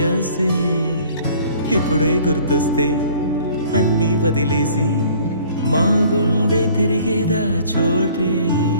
ఇప్పుడే గుర్తొస్తే అన్నీ వదిలేసి మా గుండె తిరిగేదా చోటే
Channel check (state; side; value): inverted; both; correlation -0.53